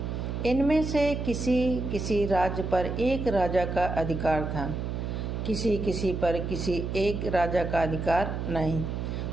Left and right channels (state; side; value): noise; right; hum, 3 dB below the sound